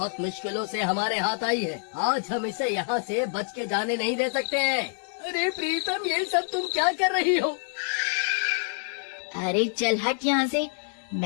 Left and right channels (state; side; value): silent; right; digital silence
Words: मुश्किलों से हमारे हाथ आई है, आज हम इसे यहाँ से बच के जाने नहीं दे सकते हैं। अरे प्रीतम, ये सब तुम क्या कर रही हो? अरे चल हट यहाँ से,